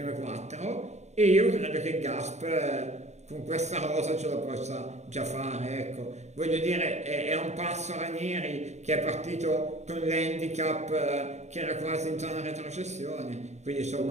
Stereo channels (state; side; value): late; left; 0.33 ms